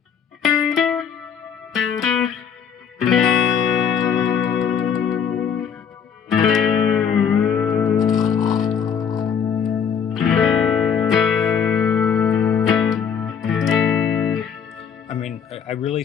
I mean, I really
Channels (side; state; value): right; quieter; 7.3 dB